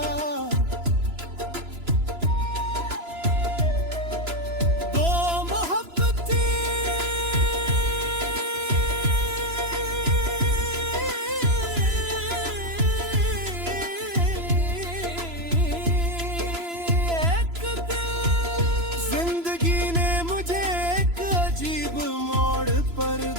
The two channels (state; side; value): late; left; 2.9 ms